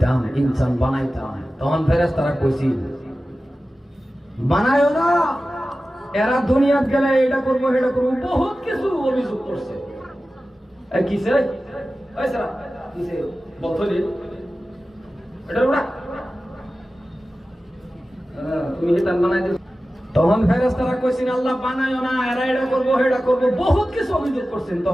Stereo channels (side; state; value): both; normal; correlation 0.95